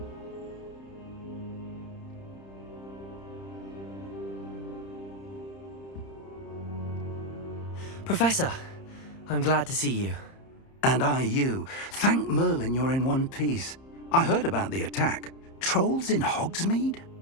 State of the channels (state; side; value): late; right; 30 ms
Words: Professor, I'm glad to see you. And I you. Thank Merlin you're in one piece. I heard about the attack. Trolls in Hogsmeade?